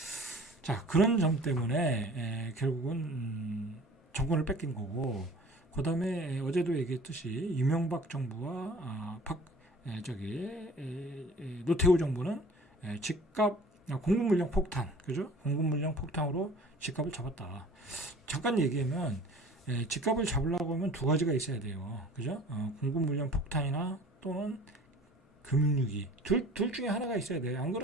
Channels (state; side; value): normal; both; correlation 0.46